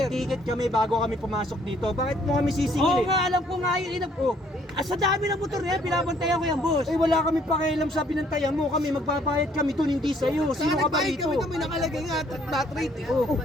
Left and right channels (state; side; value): normal; both; correlation 0.63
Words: May ticket kami bago kami pumasok dito. Bakit mo kami sisingil? Oo nga, alam ko nga yun. Sa dami ng motor niya, binabantayan ko yan, boss. Eh, wala kami pakialam sa binantayan mo. Kami, magbabayad kami doon, hindi sa'yo. Sino ka ba rito? Kami nakalagay nga flat rate eh. Oh,